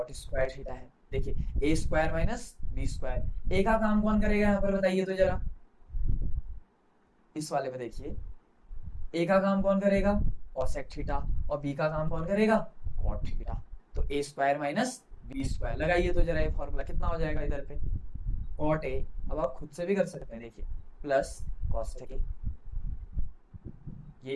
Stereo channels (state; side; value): identical; both; correlation 1.00